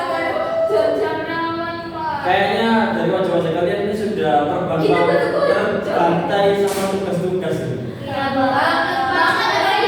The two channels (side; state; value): both; identical; correlation 1.00